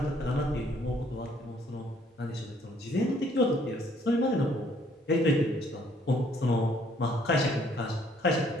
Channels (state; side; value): normal; both; correlation 0.64